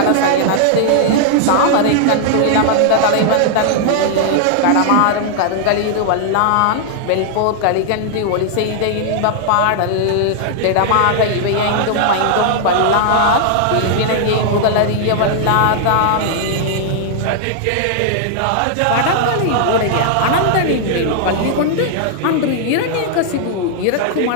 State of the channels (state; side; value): different; both; correlation -0.01